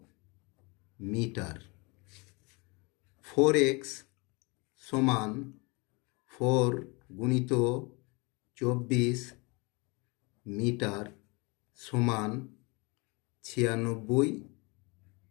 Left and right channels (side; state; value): right; quieter; 28.5 dB